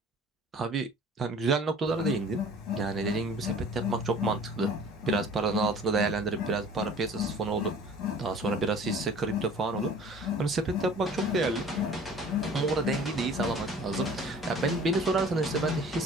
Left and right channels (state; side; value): normal; both; correlation 0.48